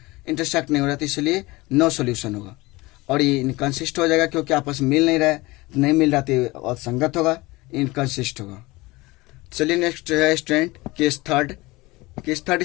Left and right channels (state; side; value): quieter; right; 21.7 dB